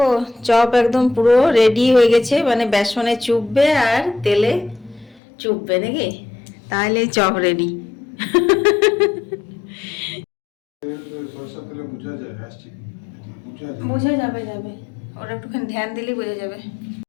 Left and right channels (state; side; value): drops out; right; at 5.2 s